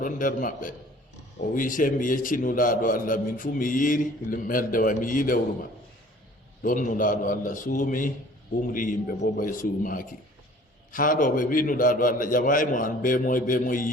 nder maɓɓe o wi se mi yecci nulaaɗo Allah min fu mi yiiri meldewa mi yi lewru ma ɗon nulaaɗo Allah suumi umri yimɓe bo bay suumaaki haa ɗo ɓe wi nulaaɗo Allah ƴamay mo an be moy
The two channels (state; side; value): normal; both; correlation 0.50